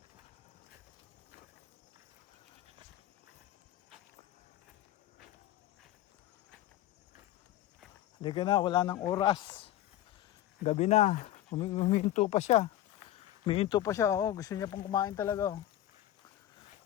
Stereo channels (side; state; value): right; quieter; 13.2 dB